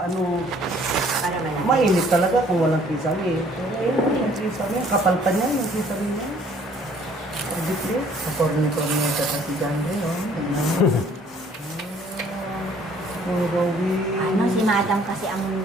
Para malaki. Mainit talaga kung walang kisame. Pero yun, yung kisame. Kapal pa niya, yung kisame niya. Pagdipre. Kaporni-porni ka kasi dyan rin, oh. Oh, Rowie. Si madam kasi ang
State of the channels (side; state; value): both; normal; correlation 0.58